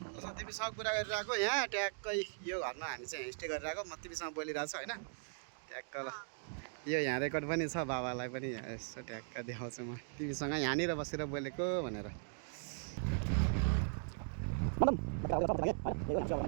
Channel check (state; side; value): silent; left; digital silence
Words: छ तिमीसँग कुरा गरिरहेको यहाँ ट्याक्कै यो घरमा हामी चाहिँ स्टे गरिरहेको म तिमीसँग बोलिरहेको छु होइन ट्याक्क ल यो यहाँ रेकर्ड पनि छ बाबालाई पनि यहाँ यसो ट्याक्क देखाउँछु म तिमीसँग यहाँनिर बसेर बोलेको भनेर